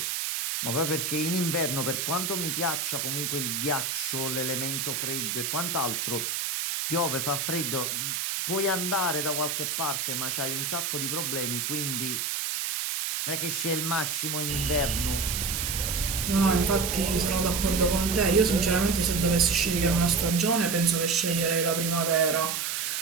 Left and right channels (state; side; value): noise; right; hiss, 1 dB below the sound